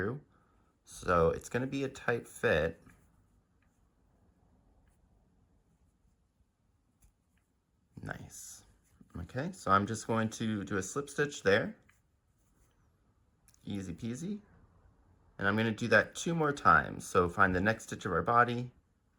So it's going to be a tight fit. Nice. Okay, so I'm just going to do a slip stitch there. Easy peasy. And I'm going to do that 2 more times. So find the next stitch of our body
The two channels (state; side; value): identical; both; correlation 1.00